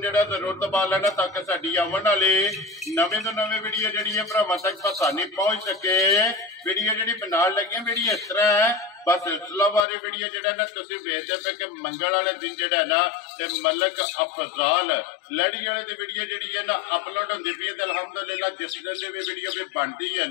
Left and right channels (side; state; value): right; drops out; at 9.9 s